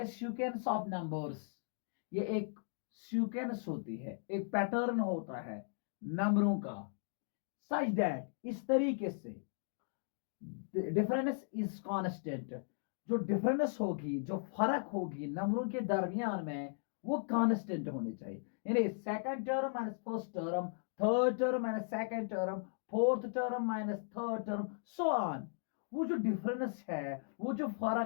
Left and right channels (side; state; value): right; silent; digital silence